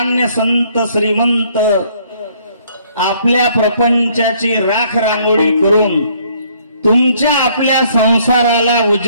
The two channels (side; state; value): both; inverted; correlation -0.64